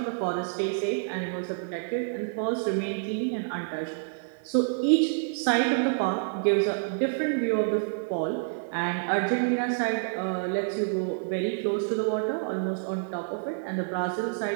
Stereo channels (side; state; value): left; silent; digital silence